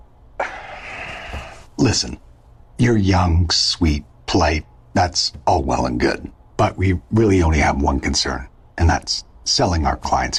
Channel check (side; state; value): both; identical; correlation 1.00